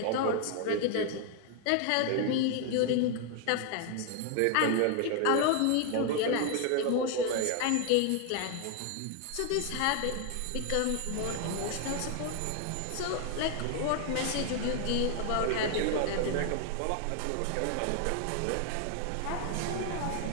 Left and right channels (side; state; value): both; different; correlation 0.00